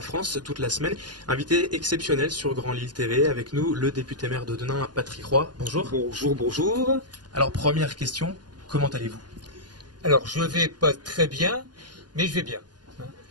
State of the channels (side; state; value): left; late; 0.70 ms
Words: toute la semaine. Invité exceptionnel sur Grand Lille TV avec nous, le député maire de Denain, Patrick Roy. Bonjour. Bonjour, bonjour. Alors première question, comment allez-vous? Alors je vais pas très bien, mais je vais bien.